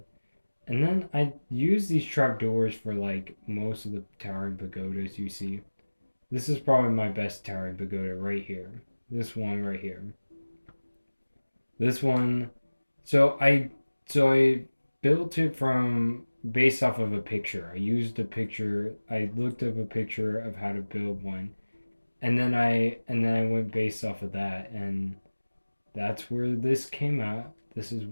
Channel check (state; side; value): inverted; both; correlation -1.00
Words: And then I use these trapdoors for like most of the towering pagodas you see. This is probably my best towering pagoda right here. This one right here. This one. So I built it from based off of a picture. I used a picture. I looked up a picture of how to build one, and then I went based off of that, and that's where this came out. This